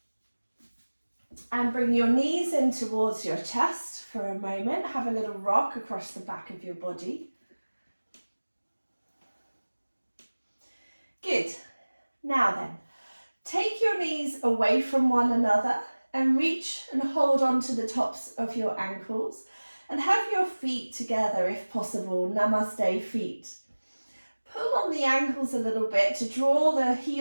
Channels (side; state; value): both; inverted; correlation -1.00